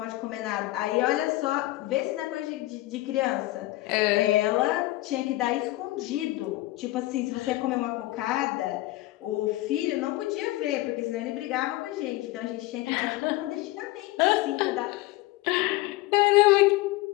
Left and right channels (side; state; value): right; quieter; 18.4 dB